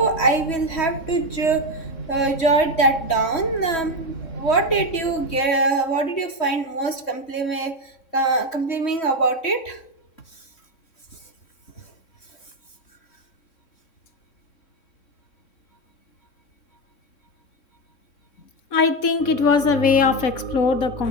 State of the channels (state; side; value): late; right; 3.1 ms